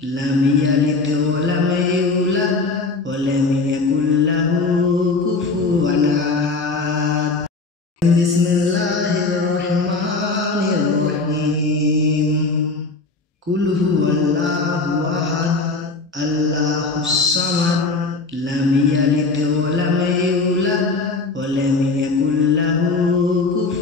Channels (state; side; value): quieter; right; 3.8 dB